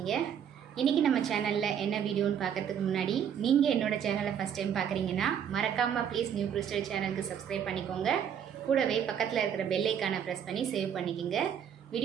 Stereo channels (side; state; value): left; quieter; 8.6 dB